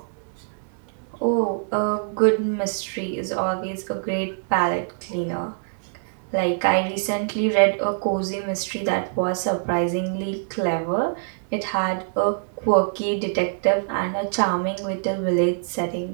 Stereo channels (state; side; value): silent; left; digital silence